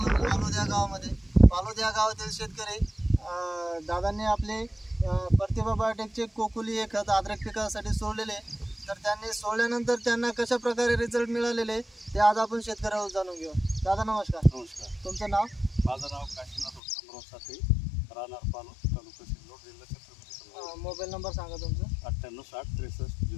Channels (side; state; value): right; drops out; at 16.8 s